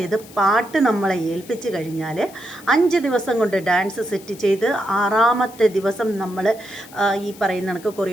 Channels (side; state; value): left; noise; hiss, 21 dB below the sound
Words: പാട്ട് നമ്മളെ ഏൽപ്പിച്ച് കഴിഞ്ഞാൽ 5 ദിവസം കൊണ്ട് ഡാൻസ് സെറ്റ് ചെയ്ത് 6ാമത്തെ ദിവസം നമ്മൾ ഈ പറയുന്ന കണക്ക്